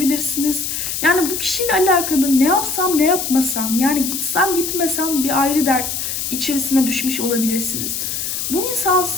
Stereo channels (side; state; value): left; noise; hiss, 3 dB below the sound